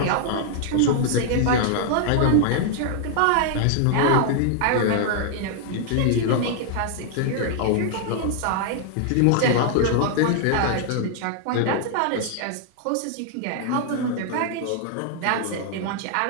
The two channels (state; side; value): different; both; correlation 0.00